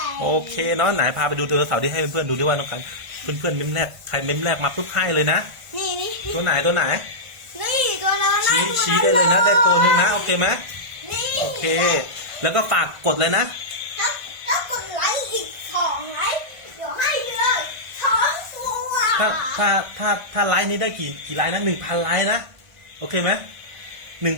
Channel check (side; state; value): left; late; 1.5 ms